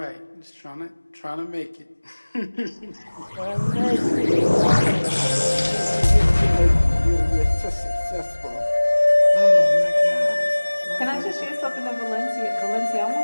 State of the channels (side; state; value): both; inverted; correlation -1.00